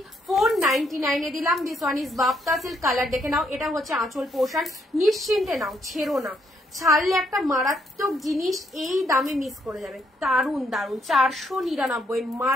499 এ দিলাম। This one is Bapta silk colour, দেখে নাও। এটা হচ্ছে আঁচল পোর্শন, নিশ্চিন্তে নাও, ছেড়ো না। ছাড়লে একটা মারাত্মক জিনিস এই দামে মিস করে যাবে। দারুন দারুন, 499,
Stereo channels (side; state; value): both; normal; correlation 0.73